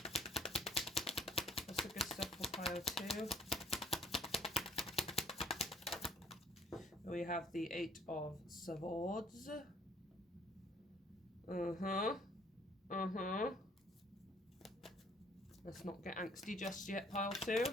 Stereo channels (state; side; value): normal; both; correlation 0.59